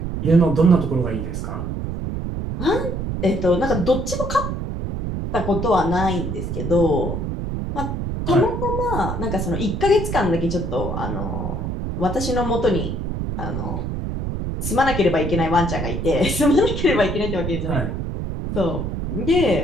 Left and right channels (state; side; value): noise; right; rumble, 3 dB below the sound